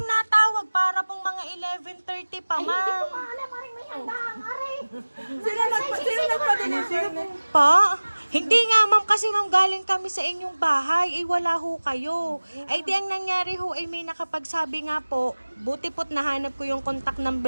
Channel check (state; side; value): inverted; both; correlation -1.00